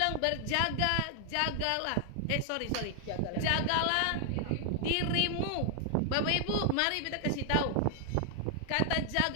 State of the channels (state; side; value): different; both; correlation 0.00